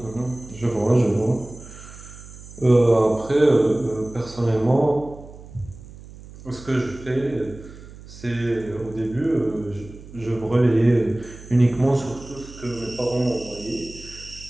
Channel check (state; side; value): noise; right; hum, 17 dB below the sound